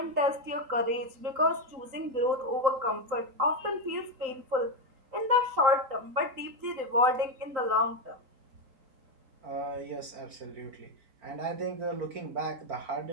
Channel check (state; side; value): late; left; 3.9 ms